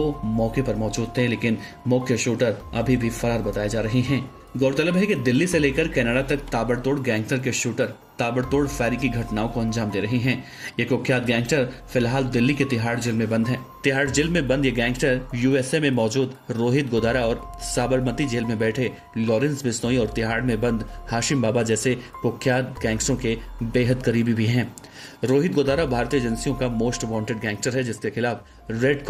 मौके पर मौजूद थे, लेकिन मुख्य शूटर अभी भी फरार बताए जा रहे हैं। गौरतलब है कि दिल्ली से लेकर कनाडा तक ताबड़तोड़ गैंगस्टर के शूटर ताबड़तोड़ फायरिंग की घटनाओं को अंजाम दे रहे हैं। ये कुख्यात गैंगस्टर फिलहाल दिल्ली के तिहाड़ जेल में बंद हैं। तिहाड़ जेल में बंद ये गैंगस्टर USA में मौजूद रोहित गुदारा और साबरमती जेल में बैठे लॉरेंस बिश्नोई और तिहाड़ में बंद हाशिम बाबा जैसे कुख्यात गैंगस्टरों के बेहद करीबी भी हैं। रोहित गुदारा भारतीय एजेंसियों का मोस्ट वांटेड गैंगस्टर है, जिसके खिलाफ रेड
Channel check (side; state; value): both; identical; correlation 1.00